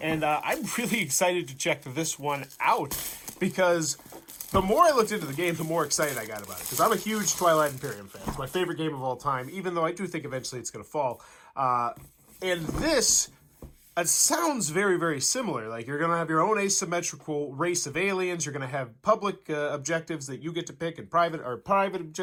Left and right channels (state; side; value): identical; both; correlation 1.00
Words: And I'm really excited to check this one out because the more I looked into the game, the more excited I got about it. Because I'm a huge Twilight Imperium fan. It's my favorite game of all time, even though I do think eventually it's going to fall. And this, it sounds very, very similar. Like, you're going to have your own asymmetrical race of aliens. You're going to have public objectives that you get to pick, and private